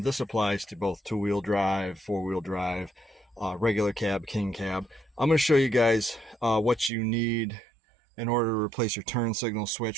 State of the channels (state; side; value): drops out; left; at 6.9 s